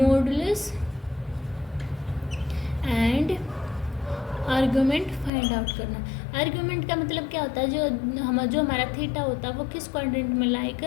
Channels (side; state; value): right; drops out; at 5.3 s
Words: and argument find out करना। आर्गुमेंट का मतलब क्या होता है, जो हमारा थीटा होता है वो किस क्वाड्रेंट में लाई